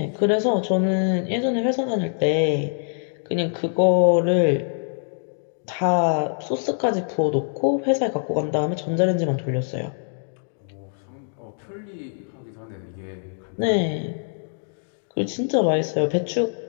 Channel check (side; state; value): right; silent; digital silence